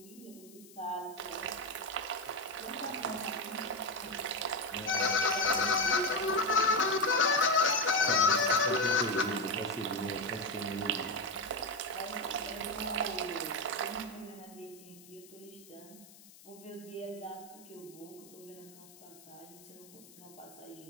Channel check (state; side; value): noise; left; hiss, 22 dB below the sound